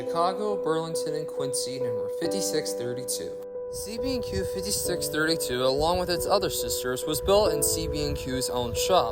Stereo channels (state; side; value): identical; both; correlation 1.00